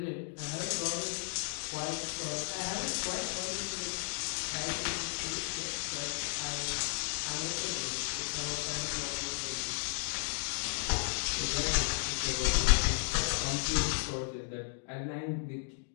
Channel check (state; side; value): silent; right; digital silence